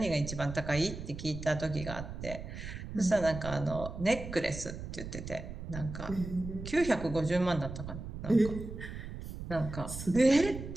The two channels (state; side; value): noise; right; rumble, 9 dB below the sound